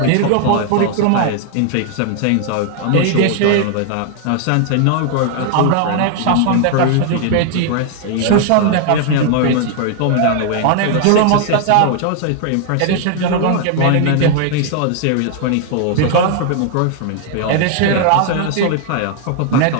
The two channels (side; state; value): both; different; correlation 0.00